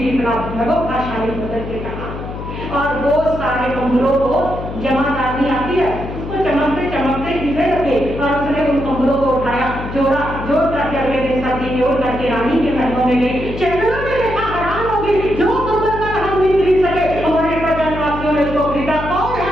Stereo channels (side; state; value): left; noise; hum, 8 dB below the sound